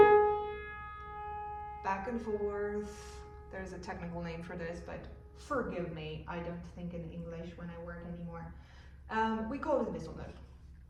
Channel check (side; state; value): both; identical; correlation 1.00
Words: Back and forth. There's a technical name for this, but forgive me, I don't think in English when I work anymore. We call it a whistle note.